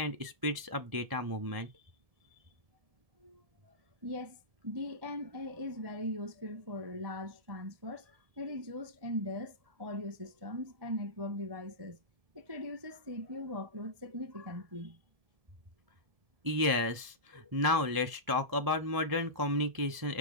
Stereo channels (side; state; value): left; late; 1.7 ms